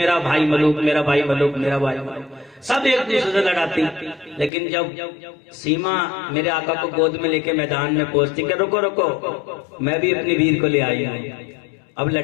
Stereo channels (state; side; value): drops out; right; at 4.5 s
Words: بھائی ملوک، میرا بھائی ملوک، میرا بھائی ملوک، سب ایک دوسرے سے لڑاتی۔ لیکن جب سیما میرے آقا کو گود میں لے کے میدان میں پہنچتی کہ رکو رکو میں بھی اپنی ویر کو لے آئی ہوں، اب